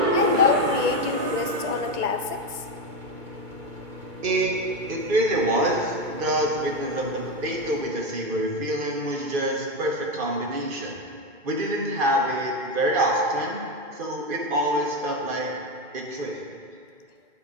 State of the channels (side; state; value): left; late; 1.9 ms